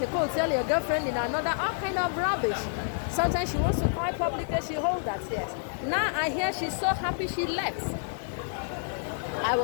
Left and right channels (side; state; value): right; silent; 59 dB below the other